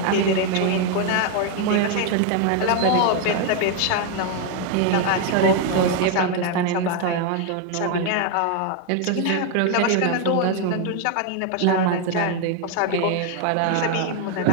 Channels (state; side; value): different; both; correlation 0.01